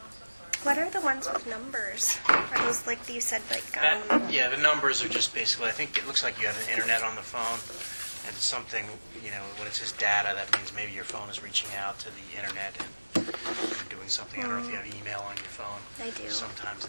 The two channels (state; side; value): inverted; both; correlation -1.00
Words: What are the ones with numbers? Are those like you said, like Yeah, the numbers are just basically, I think it looks like you have an internet on the phone, and something, when it says data, that means maybe your phone is reaching out to the internet and doing something. I don't know if you have email on your phone. I do. Sometimes